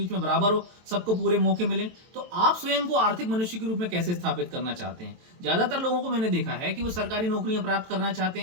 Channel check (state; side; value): late; left; 23 ms